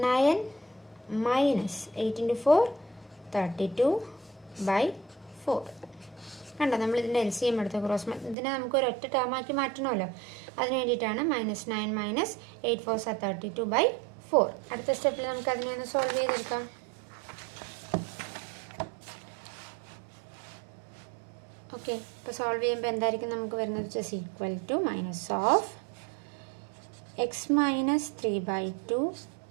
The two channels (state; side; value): drops out; left; at 8.3 s